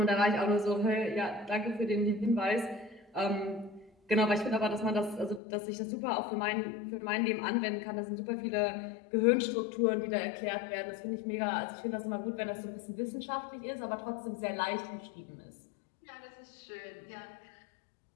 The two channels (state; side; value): drops out; right; at 5.4 s